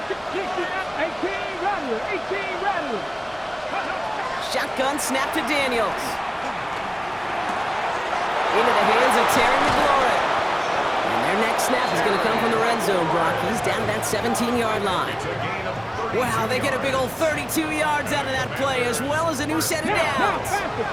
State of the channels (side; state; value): both; identical; correlation 1.00